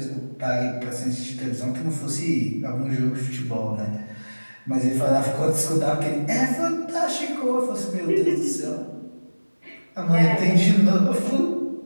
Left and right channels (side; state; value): both; inverted; correlation -1.00